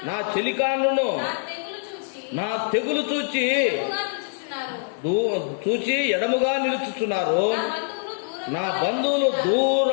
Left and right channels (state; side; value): silent; right; digital silence